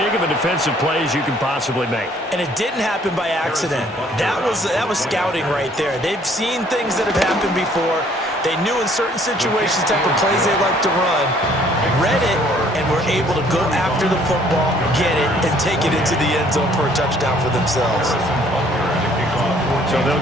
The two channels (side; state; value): both; normal; correlation 0.60